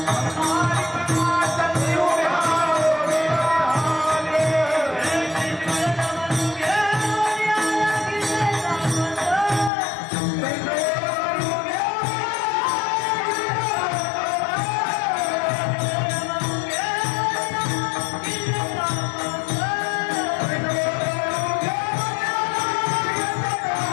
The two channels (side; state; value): right; drops out; at 9.7 s